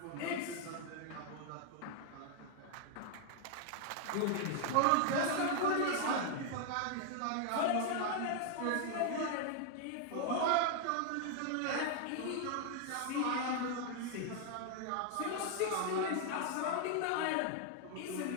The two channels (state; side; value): different; both; correlation 0.00